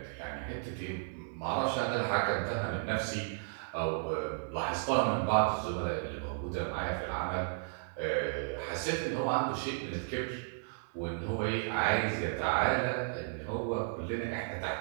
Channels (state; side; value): silent; left; digital silence